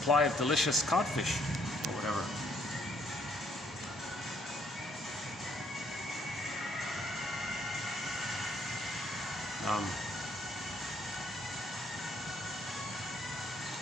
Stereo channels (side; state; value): both; normal; correlation 0.68